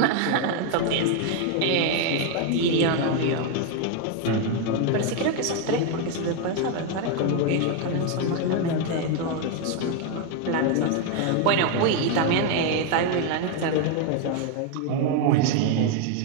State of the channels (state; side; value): different; both; correlation 0.01